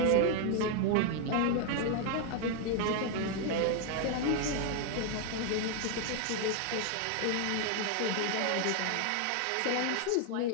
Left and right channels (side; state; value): both; different; correlation 0.00